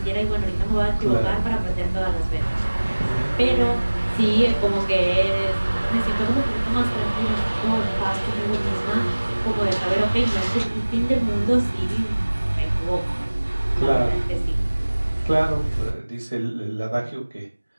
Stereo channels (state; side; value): inverted; both; correlation -1.00